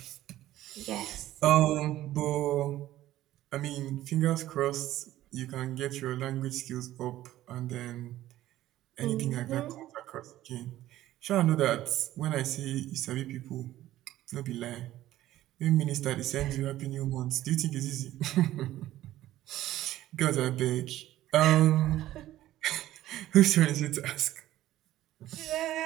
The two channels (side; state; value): left; quieter; 14.4 dB